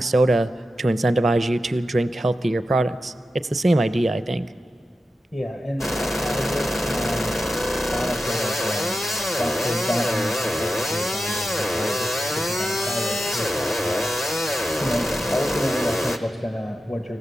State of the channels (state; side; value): normal; both; correlation 0.91